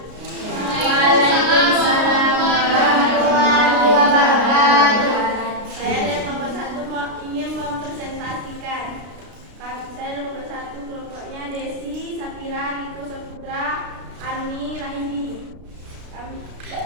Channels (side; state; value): left; late; 33 ms